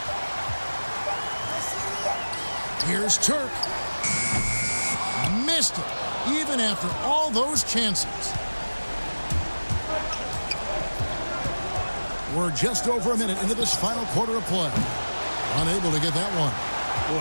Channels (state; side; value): inverted; both; correlation -1.00